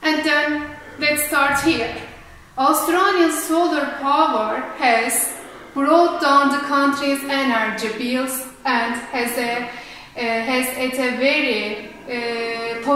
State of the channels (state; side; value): identical; both; correlation 1.00